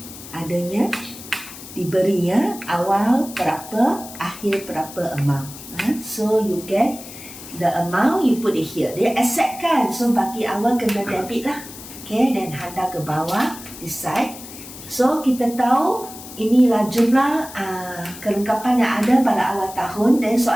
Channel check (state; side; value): noise; left; hiss, 15 dB below the sound